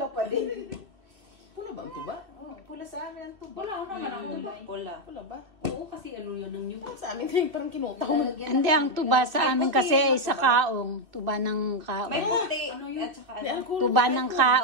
pa din. Pula ba ang tuba? Oh, pula sa amin ang tuba. Wala naman ang tuba. Pula. Pula ba? Oo, kasi ano yun ang new. Parang sa amin kayo parang kinutaw. Hindi, ang tuba sa amin kasi ay sa kaong. Tuba ng kaong. May puti. Ano yun? At saka May ano. alcohol. Tuba ng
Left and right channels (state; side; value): late; left; 2.6 ms